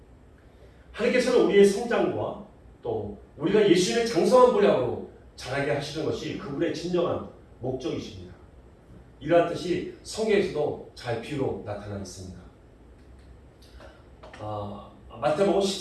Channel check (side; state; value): both; identical; correlation 1.00